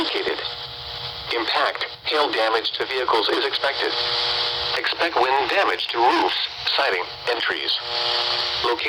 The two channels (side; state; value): both; identical; correlation 1.00